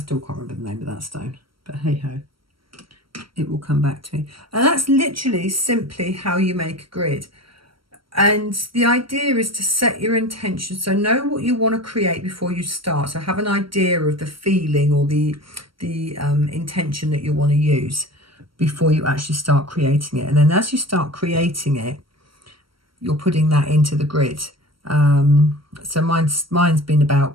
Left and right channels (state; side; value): late; left; 0.74 ms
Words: can't remember the name of that stone. But hey ho, it will come back to me. And that's literally simply how you make a grid. And the idea is to set your intention. So know what you want to create before you start. So have an idea of the feeling or the intention that you want to use before you actually start creating it. And then as you start creating it, you're putting that into the grid. So mine's been